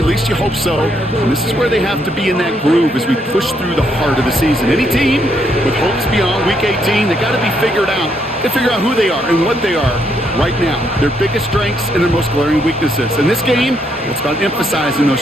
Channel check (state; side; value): normal; both; correlation 0.74